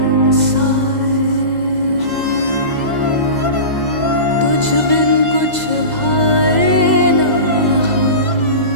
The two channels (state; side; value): late; left; 2.0 ms